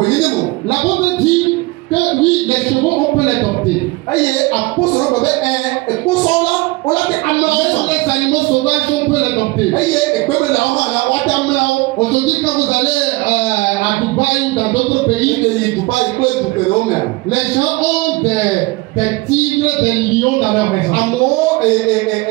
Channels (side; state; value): left; quieter; 22.8 dB